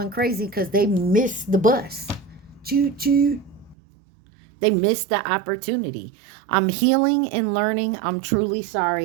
crazy because they missed the bus. Choo choo. They missed the opportunity. I'm healing and learning. I'm truly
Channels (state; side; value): drops out; left; at 3.8 s